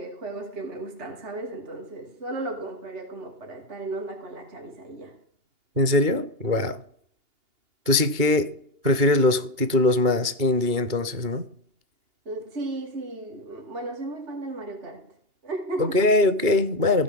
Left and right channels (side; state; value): left; late; 2.8 ms